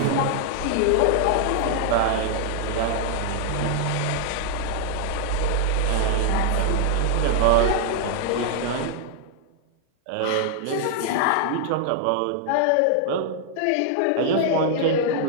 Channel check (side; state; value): both; different; correlation 0.00